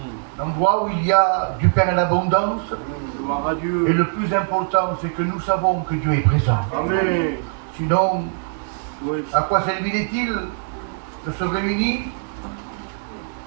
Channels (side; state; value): left; silent; digital silence